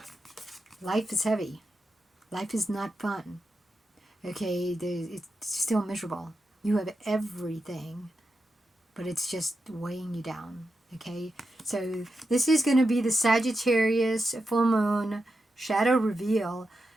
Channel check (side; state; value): both; normal; correlation 0.88